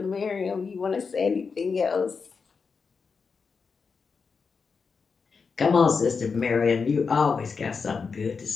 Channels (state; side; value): quieter; right; 5.2 dB